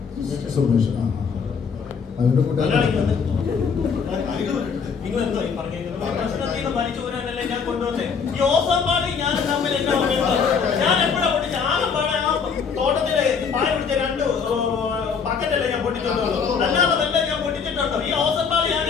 സുമേഷ് അവരുടെ കൂടെ നിങ്ങൾ എന്തോ ഈ പറഞ്ഞേക്കുന്നത്? പ്രശ്നത്തിന് വലിച്ചു പോരാനല്ലേ ഞാൻ കൊണ്ടുവന്നേ. ഈ ഓസമ്പാടി ഞാൻ തമ്മിൽ എന്നാ ഞാൻ എപ്പോഴാ പൊട്ടിച്ച? ആലമ്പാടെ ആ തോട്ടത്തിലെ പായ പിടിച്ച 2 ബക്കറ്റല്ലേ ഞാൻ പൊട്ടിച്ചിട്ടുള്ളൂ. അല്ലാതെ വല്ല ഞാൻ പൊട്ടിച്ചിട്ടുണ്ടോ? ഈ ഓസമ്പാടി ഞാൻ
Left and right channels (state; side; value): quieter; right; 6.0 dB